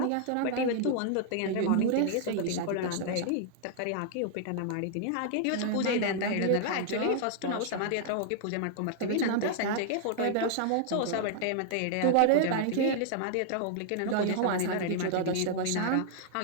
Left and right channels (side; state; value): both; different; correlation -0.01